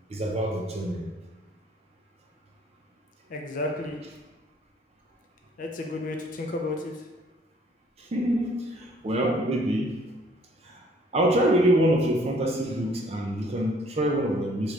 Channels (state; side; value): normal; both; correlation 0.59